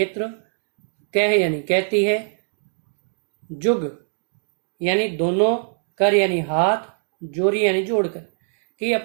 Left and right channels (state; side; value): silent; left; digital silence